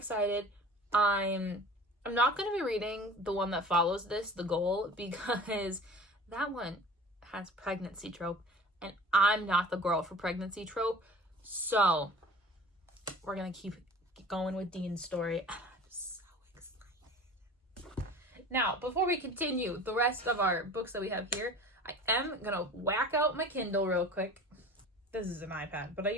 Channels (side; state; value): both; normal; correlation 0.42